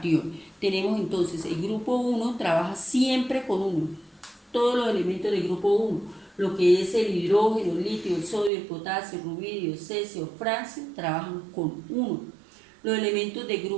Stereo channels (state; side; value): drops out; left; at 8.5 s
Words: Tenemos entonces el grupo 1 trabaja siempre con 1. Todos los elementos del grupo 1, lo que es el hidrógeno, el litio, el sodio, el potasio, el rubidio, el cesio, el francio, trabajan con 1. Los elementos del